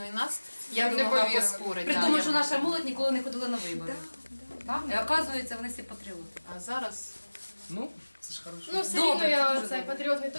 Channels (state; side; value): inverted; both; correlation -1.00